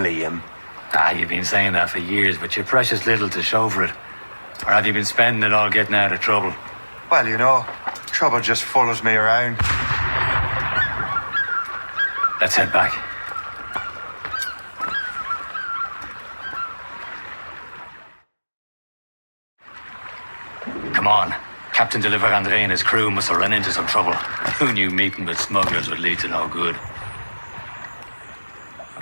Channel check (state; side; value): inverted; both; correlation -1.00